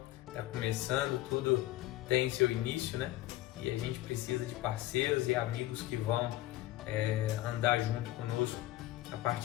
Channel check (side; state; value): right; quieter; 16.0 dB